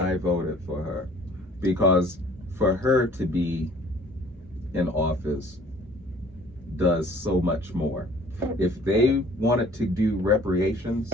voted for her, because for her to be in office does so much more. If they wanted to do reparations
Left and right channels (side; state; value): both; normal; correlation 0.53